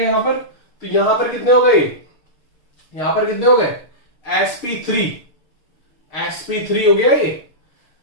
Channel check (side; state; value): right; late; 6.6 ms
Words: पर। तो यहां पर कितने हो गए? यहां पर कितने हो गए, sp3 हो गया ये।